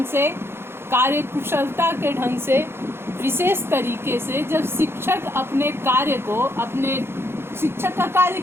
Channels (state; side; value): late; left; 0.12 ms